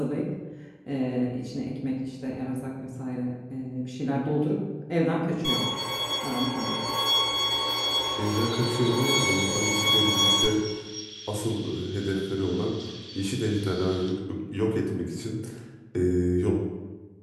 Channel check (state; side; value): identical; both; correlation 1.00